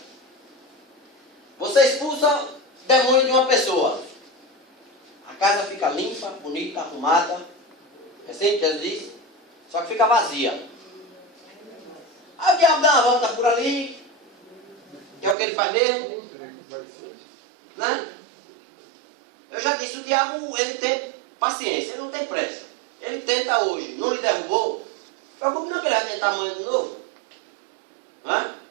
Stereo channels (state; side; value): drops out; left; at 15.4 s